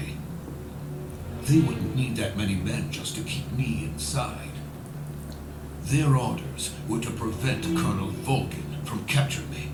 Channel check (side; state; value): both; identical; correlation 1.00